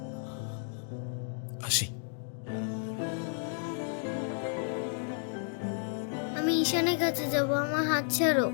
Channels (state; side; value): silent; right; 56 dB below the other